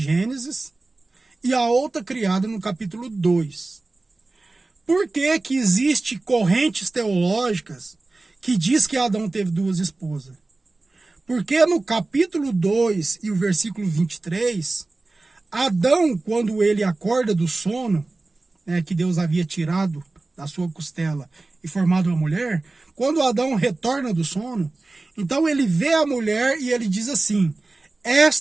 e a outra criada no capítulo 2. Por que que existe correntes teológicas que diz que Adão teve duas esposas? Porque no capítulo 2 e o versículo 23, Adão, quando ele acorda do sono, que Deus havia tirado da sua costela e formado uma mulher, quando Adão retorna do sono, então ele vê a mulher e ele diz assim:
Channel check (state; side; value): quieter; left; 3.3 dB